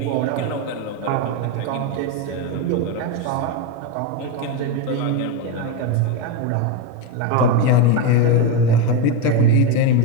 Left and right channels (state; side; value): different; both; correlation 0.04